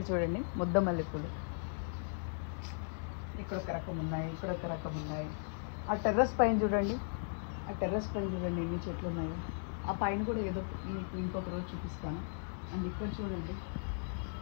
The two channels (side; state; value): right; silent; digital silence